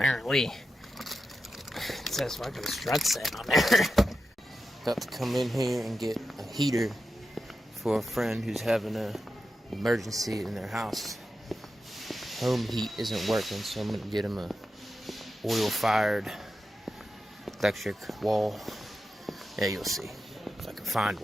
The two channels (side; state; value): both; normal; correlation 0.90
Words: it says fucking struts set on there. Got to come in here and get a heater for a friend who's having an emergency in their house. Home heat isn't working, so I'm gonna get him a oil-fired electric wall. Yeah, you'll see if I can find